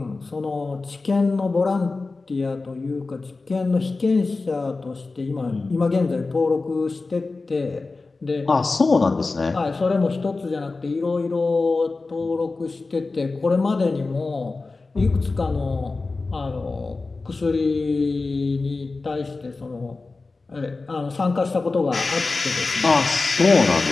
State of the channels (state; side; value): quieter; right; 3.7 dB